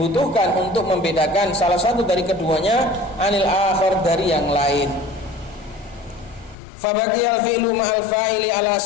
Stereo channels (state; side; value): drops out; right; at 6.6 s